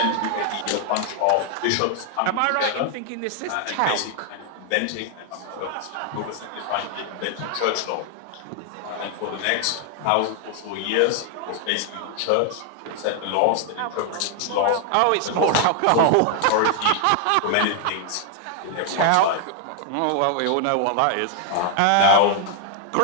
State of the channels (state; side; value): different; both; correlation 0.00